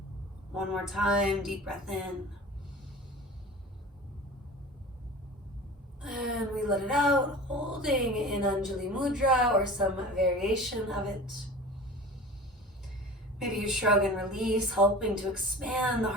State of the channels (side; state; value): both; normal; correlation 0.38